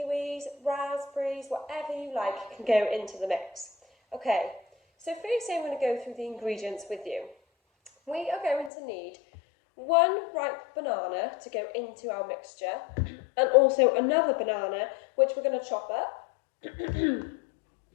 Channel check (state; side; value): drops out; right; at 8.7 s